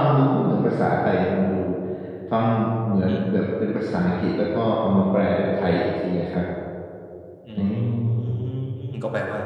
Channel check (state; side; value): identical; both; correlation 1.00